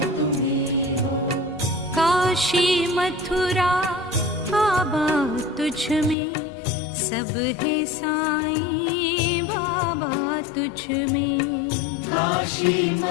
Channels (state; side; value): drops out; right; at 6.2 s